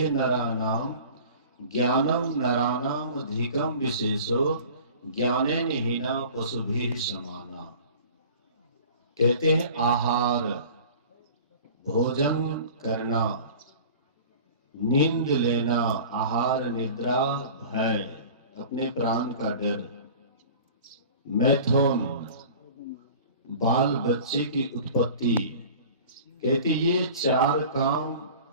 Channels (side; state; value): both; inverted; correlation -0.41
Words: नराणाम ज्ञानम नराणाम अधिकम विशेषो ज्ञानेन हीना पशुभिः समाना। कहते हैं आहार, भोजन करना, नींद लेना, आहार निद्रा भय, अपने प्राण का डर, मैथुन बाल बच्चे की उत्पत्ति। कहते ये चार काम